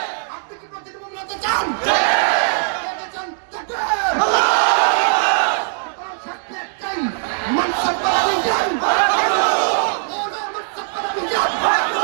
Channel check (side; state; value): left; silent; digital silence